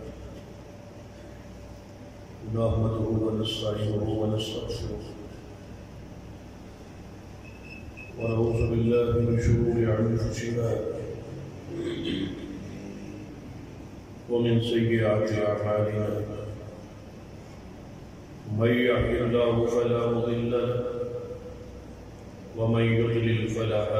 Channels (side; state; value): both; identical; correlation 1.00